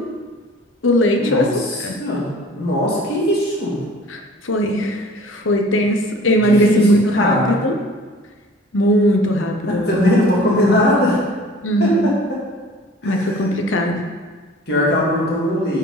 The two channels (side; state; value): both; normal; correlation 0.48